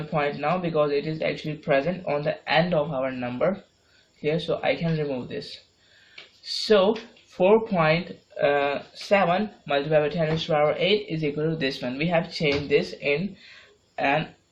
point now because it is actually present on the end of our number here. So I can remove this. So 4.7 7 multiplied by 10 raised to the power 8 is equal to this one. We have changed this in an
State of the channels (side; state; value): both; identical; correlation 1.00